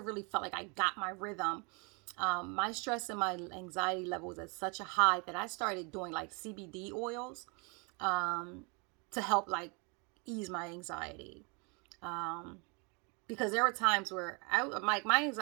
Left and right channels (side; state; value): left; quieter; 32.4 dB